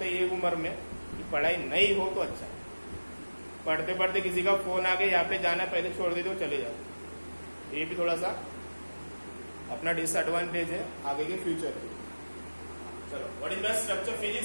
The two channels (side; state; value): both; inverted; correlation -1.00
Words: है ये उम्र में कि पढ़ाई नहीं हो तो अच्छा है, पढ़ते पढ़ते किसी का फोन आ गया, यहाँ पे जाना है, पहले छोड़ देते हो चले जाओ। ये भी थोड़ा सा अपना डिसएडवांटेज है आगे के फ्यूचर के। चलो, what is the structure